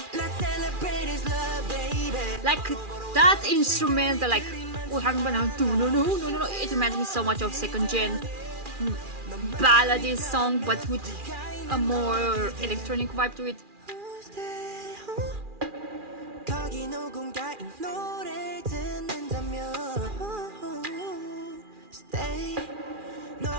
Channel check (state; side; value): late; left; 2.4 ms